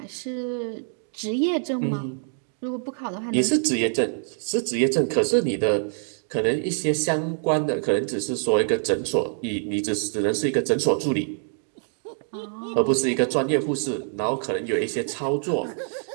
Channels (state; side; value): silent; left; digital silence